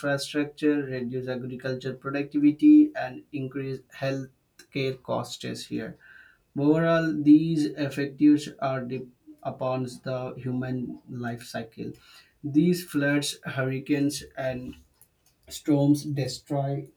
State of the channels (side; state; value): both; identical; correlation 1.00